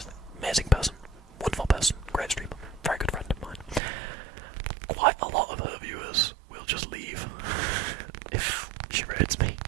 Amazing person, wonderful person, great streamer, very good friend of mine. Quite a lot of her viewers will just leave if she raids me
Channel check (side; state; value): left; drops out; at 3.8 s